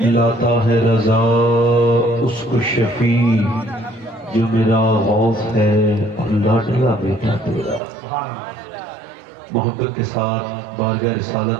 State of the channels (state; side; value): drops out; left; at 7.8 s